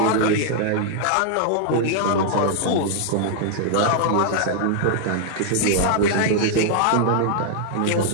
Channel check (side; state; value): both; different; correlation 0.00